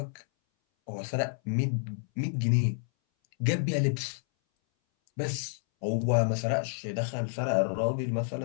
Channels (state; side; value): silent; right; 58 dB below the other